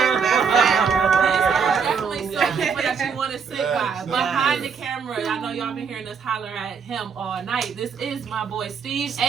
Definitely some people that you want to sit by. Behind the camera, I know y'all been hearing us holler at him all night. This is my boy Steve,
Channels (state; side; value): quieter; left; 6.2 dB